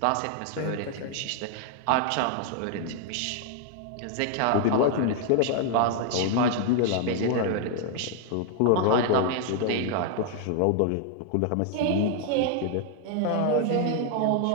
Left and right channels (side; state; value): both; different; correlation 0.00